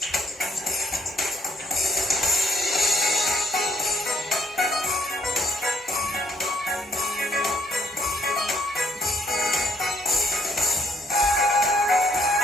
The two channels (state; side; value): normal; both; correlation 0.68